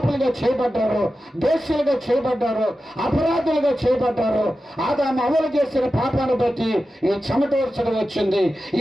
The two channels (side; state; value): both; normal; correlation 0.92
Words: చేయబడ్డారో, దోషులుగా చేయబడ్డారో, అపరాధులుగా చేయబడ్డారో, ఆదాము అమలు చేసిన పాపాన్ని బట్టి ఈ చెమట వర్షం వచ్చింది,